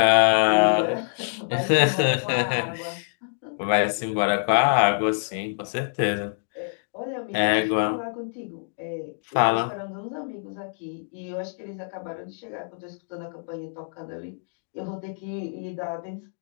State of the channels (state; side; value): silent; right; digital silence